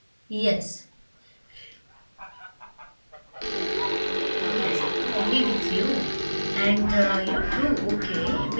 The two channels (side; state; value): both; inverted; correlation -1.00